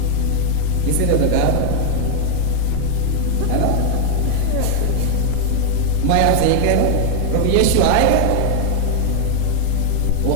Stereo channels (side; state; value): both; different; correlation 0.00